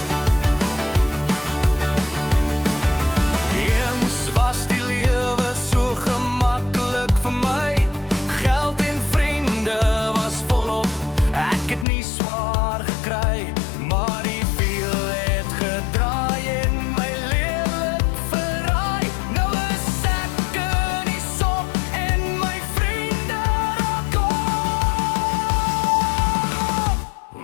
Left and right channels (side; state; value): right; drops out; at 11.9 s